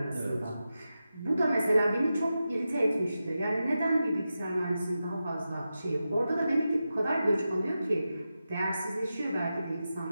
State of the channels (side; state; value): both; inverted; correlation -0.91